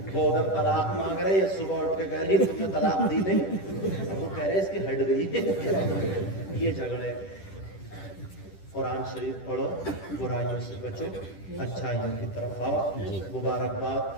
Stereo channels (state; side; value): late; right; 10 ms